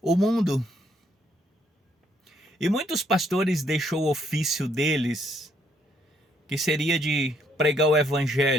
o mundo. E muitos pastores deixou o ofício deles, que seria de pregar o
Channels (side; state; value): both; normal; correlation 0.70